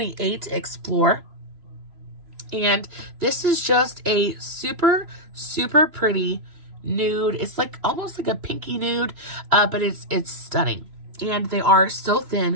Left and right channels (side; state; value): left; late; 3.0 ms